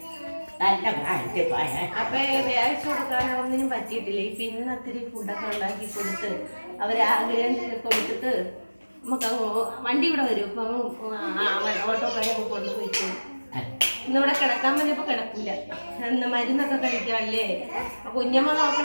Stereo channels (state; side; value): inverted; both; correlation -1.00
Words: അപ്പൊ വ്യാഴ്ച കൊടുക്കാൻ ഒന്നിനും പറ്റിയിട്ടില്ല. പിന്നെ ഒത്തിരി ഫുഡൊക്കെ ഉണ്ടാക്കി കൊടുത്ത് അവരാഗ്രഹം കൊടുത്തിട്ട് നമുക്ക് വണ്ടി ഇവിടെ വരും. ഇപ്പം ഓട്ടോക്കാരെ കൊണ്ടുപോയിട്ട് ഇന്നിവിടെ കിടക്കാൻ പറഞ്ഞപ്പോ കിടക്കൂല. എന്ന് മരുന്നൊക്കെ കഴിക്കാല്ലേ. കുഞ്ഞമ്മ